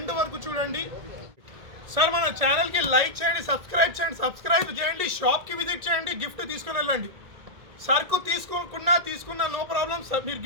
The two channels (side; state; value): left; late; 1.8 ms